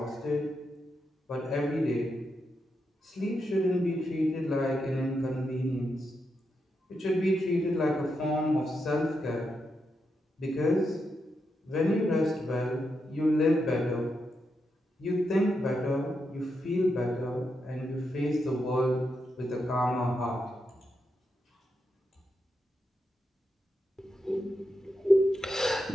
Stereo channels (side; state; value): both; normal; correlation 0.85